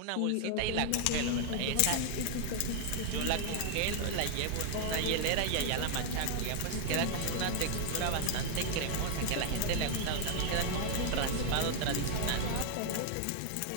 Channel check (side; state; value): both; different; correlation 0.00